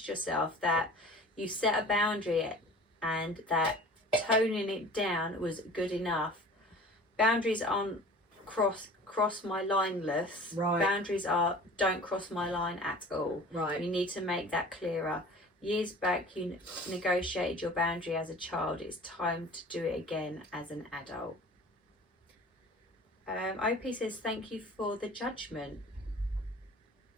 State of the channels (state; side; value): normal; both; correlation 0.43